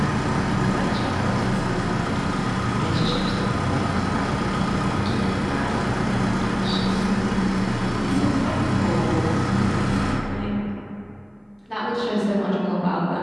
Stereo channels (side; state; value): both; identical; correlation 1.00